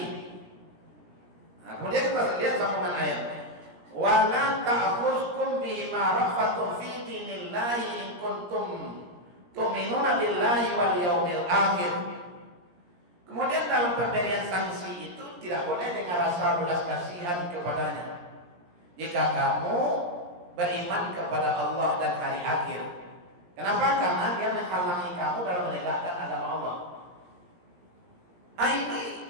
Nah, kemudian kita lihat sambungan ayatnya. Wala ta'khuzkum bima rafatun fi dinillahi in kuntum tu'minuna billahi wal yaumil akhir. Kemudian dalam pemberian sanksi itu tidak boleh dengan rasa belas kasihan kepadanya. Jika kamu beriman kepada Allah dan hari akhir. Kenapa? Karena dia menghalangi kamu dalam menegakkan agama Allah. Ini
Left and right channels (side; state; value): left; late; 17 ms